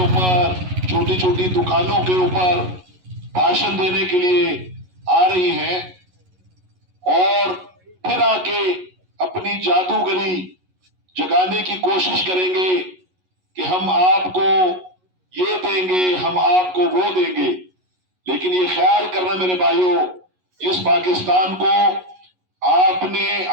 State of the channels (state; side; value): late; left; 11 ms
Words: چھوٹی چھوٹی دکانوں کے اوپر بھاشن دینے کے لیے آ رہی ہیں اور پھر آ کے اپنی جادوگری جگانے کی کوشش کریں گے کہ ہم آپ کو یہ دیں گے، ہم آپ کو وہ دیں گے۔ لیکن یہ خیال کرنا میرے بھائیوں، اس پاکستان کو آپ نے،